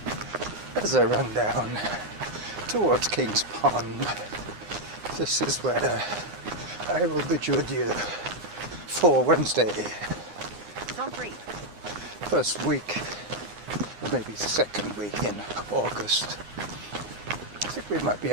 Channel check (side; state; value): left; late; 9.9 ms